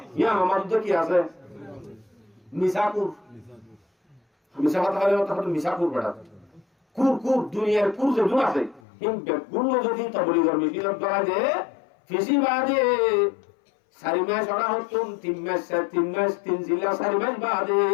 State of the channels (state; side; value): drops out; right; at 8.8 s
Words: ইয়া আমার তো কি আছে মিসাকুর মিসা কথা হলে তখন মিসাকুর বেড়া কুর দুনিয়ার কুর যে দুন আছে হিম বেগুন যদি তাবলীগের মিছিল করা যে ফেসি বাদে 4 মাস ওরা হতুন 3 মাস 3 জিলা 4 মাস বাদে